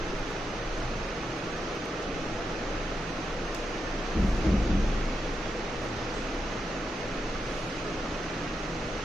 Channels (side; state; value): both; normal; correlation 0.85